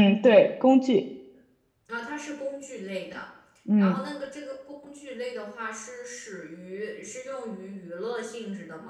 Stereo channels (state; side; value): identical; both; correlation 1.00